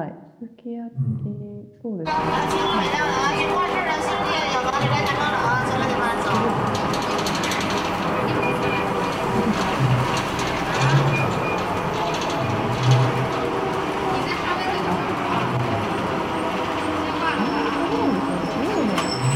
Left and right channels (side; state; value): both; identical; correlation 1.00